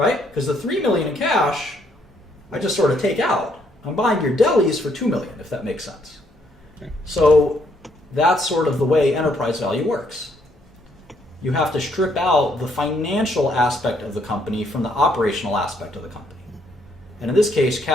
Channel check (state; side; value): normal; both; correlation 0.71